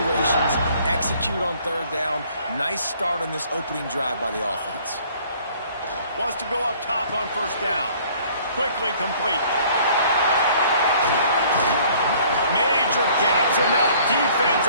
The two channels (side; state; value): both; inverted; correlation -0.56